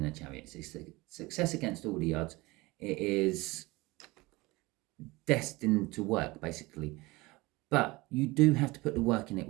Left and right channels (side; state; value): left; quieter; 22.1 dB